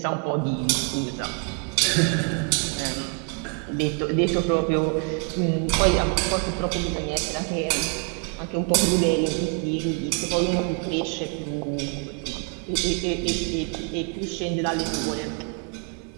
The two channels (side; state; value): left; quieter; 38.8 dB